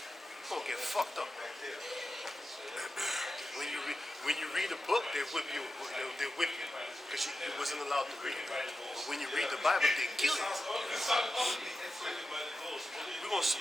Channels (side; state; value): both; normal; correlation 0.91